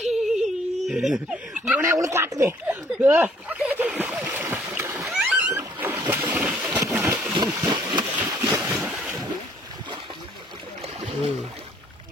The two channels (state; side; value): normal; both; correlation 0.62